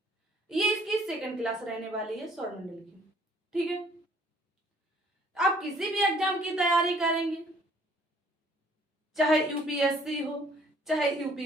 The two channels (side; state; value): both; normal; correlation 0.59